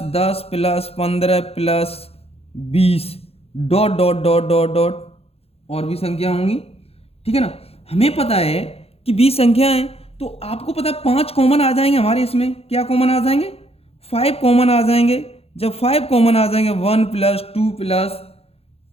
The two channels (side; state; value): right; late; 0.29 ms